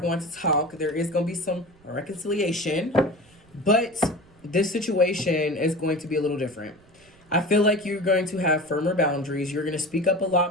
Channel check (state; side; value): noise; right; rumble, 28 dB below the sound